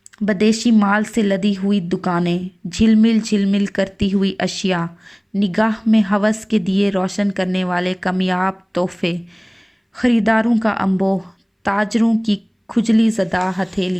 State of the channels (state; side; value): identical; both; correlation 1.00